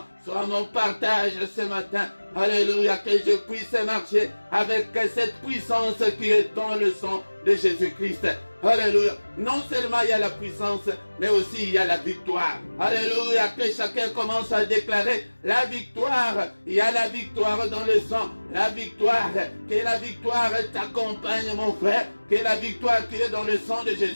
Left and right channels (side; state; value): both; inverted; correlation -1.00